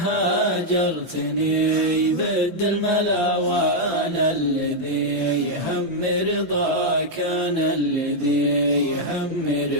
هاجرتني بد الملا وأنا الذي يهم رضاك، أنا الذي يهم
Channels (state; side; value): late; right; 5.9 ms